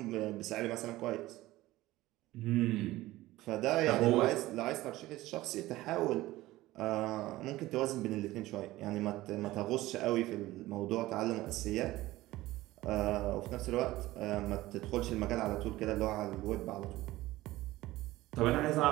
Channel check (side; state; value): left; quieter; 17.3 dB